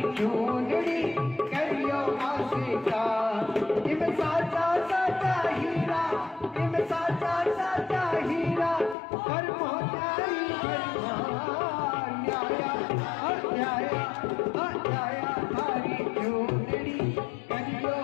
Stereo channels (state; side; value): drops out; right; at 9.0 s